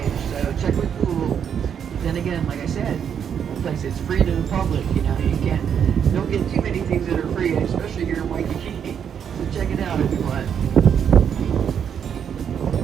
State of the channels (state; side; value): quieter; left; 8.0 dB